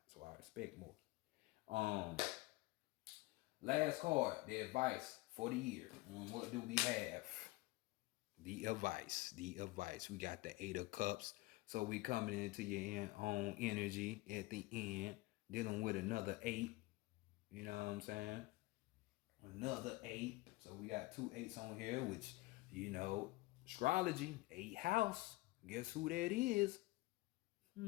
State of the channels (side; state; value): right; quieter; 21.1 dB